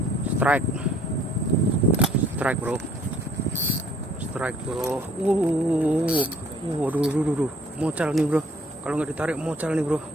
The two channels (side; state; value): both; normal; correlation 0.59